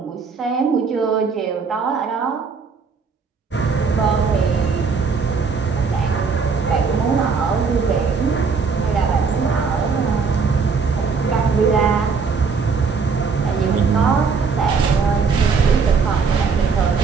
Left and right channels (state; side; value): quieter; left; 5.2 dB